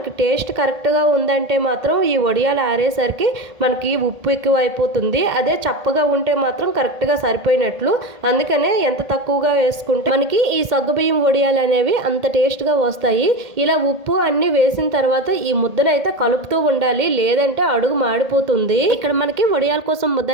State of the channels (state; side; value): late; left; 1.8 ms